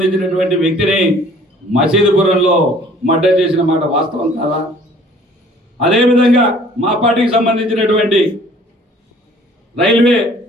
వ్యక్తిని మసీదుపురంలో మర్డర్ చేసిన మాట వాస్తవం కాదా? అదేవిధంగా మా పార్టీకి సంబంధించినటువంటి రైల్వే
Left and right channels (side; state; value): both; normal; correlation 0.54